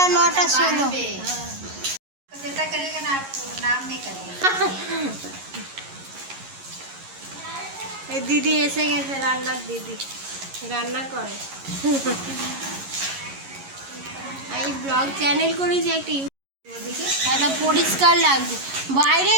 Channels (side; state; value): left; late; 11 ms